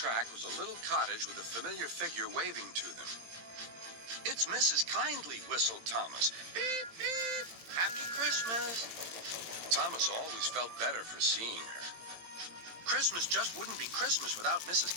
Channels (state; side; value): late; left; 18 ms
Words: was a little cottage with a familiar figure waving to them. "It's Mrs. Kindly," whistled Thomas. "Beep, beep. Happy Christmas." Thomas always felt better for seeing her. Christmas just wouldn't be Christmas without Mrs.